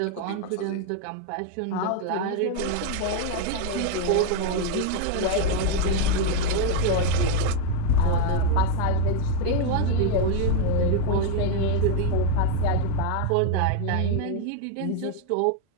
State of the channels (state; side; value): different; both; correlation 0.01